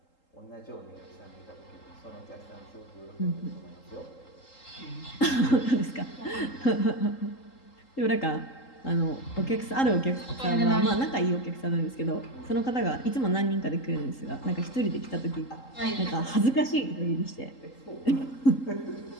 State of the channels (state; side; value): late; right; 3.8 ms